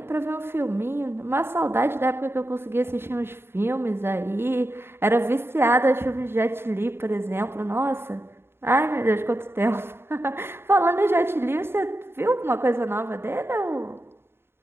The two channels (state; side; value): late; left; 0.11 ms